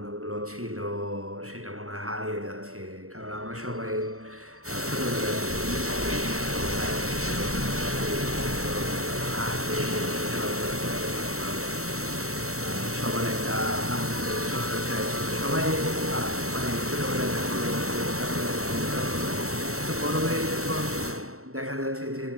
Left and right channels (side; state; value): left; late; 0.64 ms